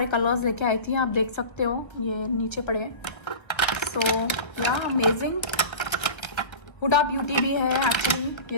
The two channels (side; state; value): right; late; 1.6 ms